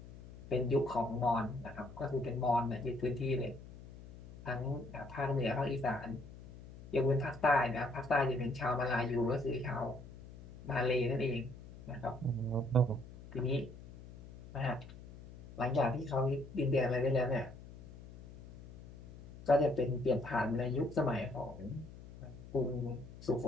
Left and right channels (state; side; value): noise; left; hum, 16 dB below the sound